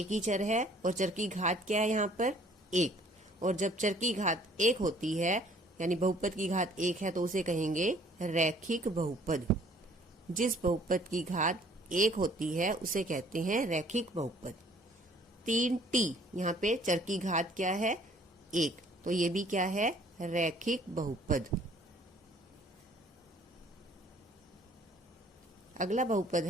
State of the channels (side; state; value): both; normal; correlation 0.57